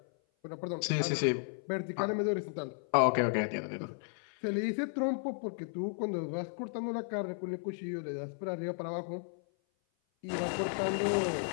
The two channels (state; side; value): silent; right; 55 dB below the other